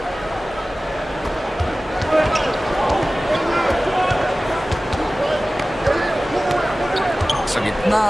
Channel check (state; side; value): normal; both; correlation 0.97